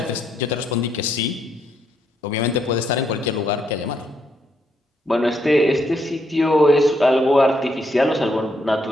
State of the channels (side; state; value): both; normal; correlation 0.76